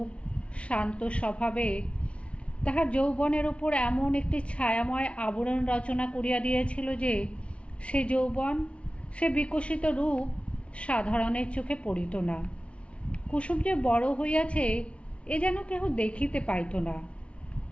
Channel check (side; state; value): right; late; 0.061 ms